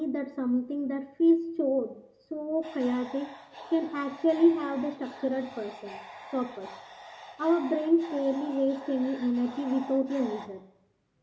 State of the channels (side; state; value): both; identical; correlation 1.00